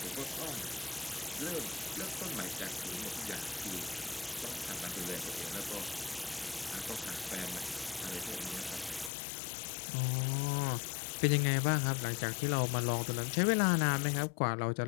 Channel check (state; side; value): drops out; right; at 9.1 s